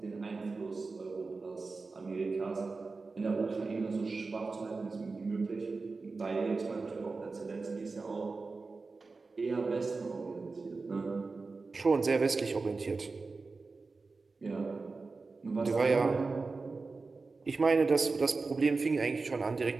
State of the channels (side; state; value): left; quieter; 4.0 dB